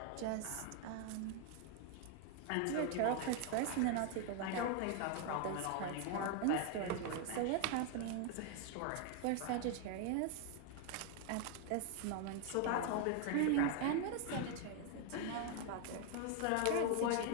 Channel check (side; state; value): both; different; correlation 0.00